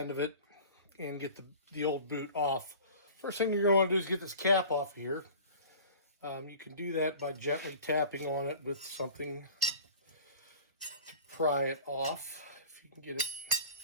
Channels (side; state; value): both; inverted; correlation -0.42